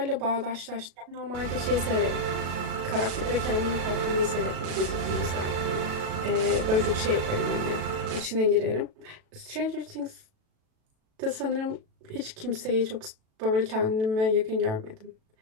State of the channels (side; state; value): left; late; 37 ms